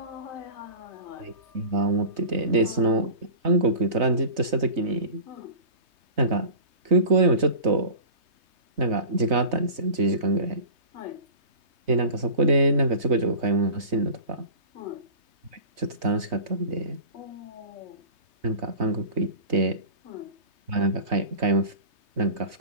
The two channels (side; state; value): left; late; 3.2 ms